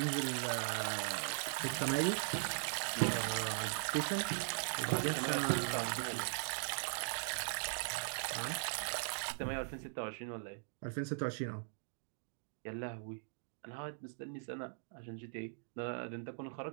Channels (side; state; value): left; silent; digital silence